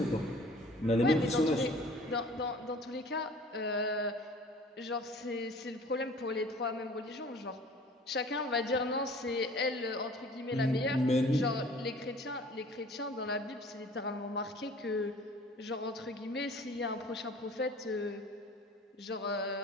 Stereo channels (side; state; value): both; normal; correlation 0.48